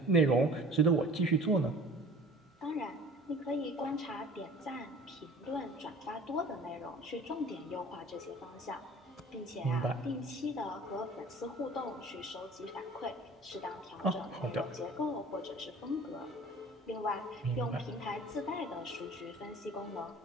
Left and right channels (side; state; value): both; normal; correlation 0.45